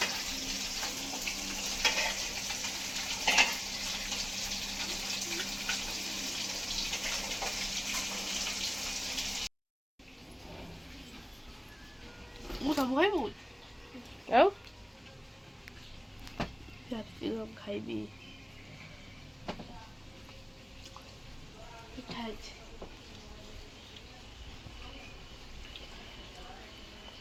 ମୁଁ ସବୁ ଖାଇବୁ ଆଉ କ୍ୟାପ୍ସିକମ୍ ଖାଇବି। ପିଠା ହେଇଛି।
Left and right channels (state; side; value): identical; both; correlation 1.00